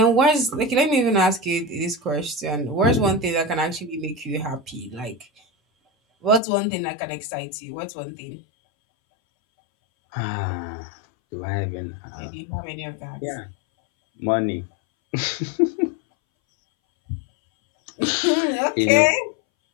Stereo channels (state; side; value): drops out; right; at 6.4 s